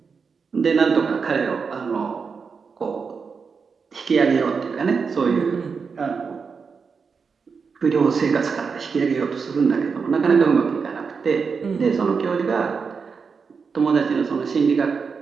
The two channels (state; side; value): quieter; left; 5.4 dB